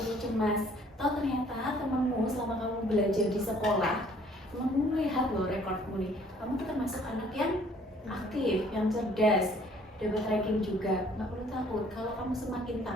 cemas. Toh ternyata temanmu selama kamu belajar di sekolah, temanmu melihat loh rekormu nih. Kamu tuh termasuk anak yang aktif, yang cerdas, dapat ranking juga. Nggak perlu takut. Kalau kamu semakin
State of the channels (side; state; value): both; normal; correlation 0.59